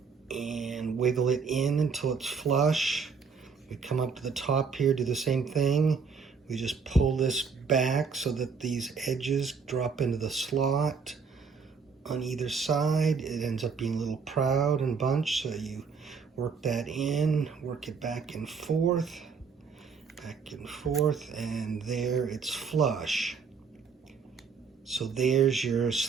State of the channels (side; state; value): left; quieter; 5.5 dB